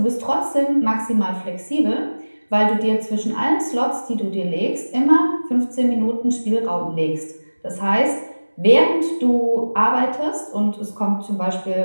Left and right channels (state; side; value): inverted; both; correlation -1.00